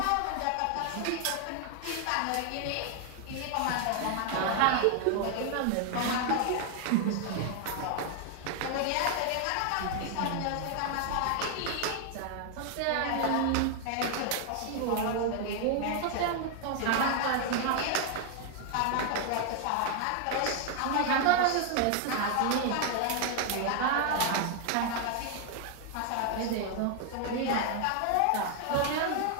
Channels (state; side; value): different; both; correlation 0.00